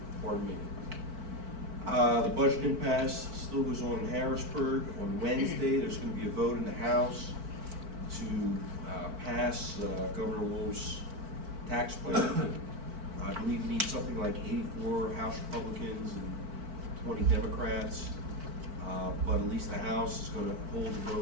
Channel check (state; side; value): late; left; 4.5 ms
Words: Pardon me. The budget impasse still goes on in Harrisburg. On Wednesday, there's going to be a vote in the House to pass Governor Wolf's tax plan. I believe we need something like 84 House Republicans and 20 Democrats, but at least the House is going to hold the